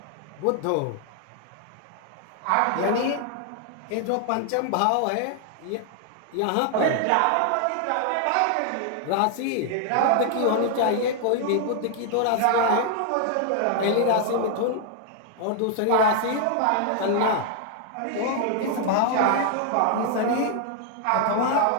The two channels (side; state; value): both; different; correlation 0.00